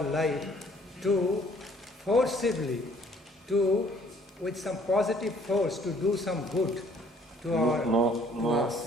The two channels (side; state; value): both; normal; correlation 0.60